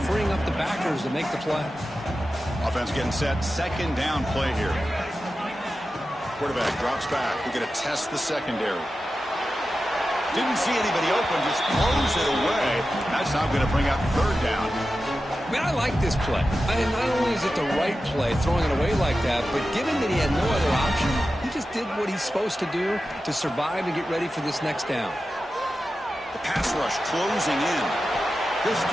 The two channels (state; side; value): normal; both; correlation 0.92